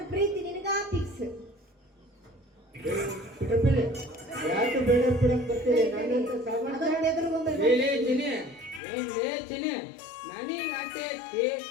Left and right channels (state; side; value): drops out; right; at 8.8 s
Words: ಪ್ರೀತಿ ನಿನಗ ಫಿಕ್ಸ್. ಬಿಡಬೇಡಿ, ಯಾಕೆ ಬೇಡ ಬಿಡಕ್ ಬರ್ತೀರಿ? ನನ್ನಂತ ಸಾಮಾನ್ಯ ಅದನ್ನ ಎದುರುಗೊಂಡು ಚಿನಿ ನನಗೆ ಆಸೆ ಐತಿ,